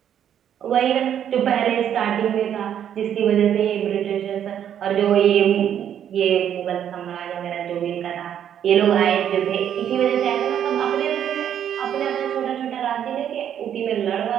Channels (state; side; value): quieter; left; 9.6 dB